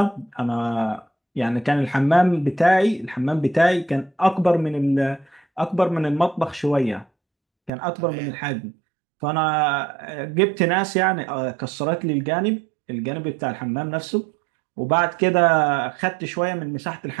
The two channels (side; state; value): left; drops out; at 7.7 s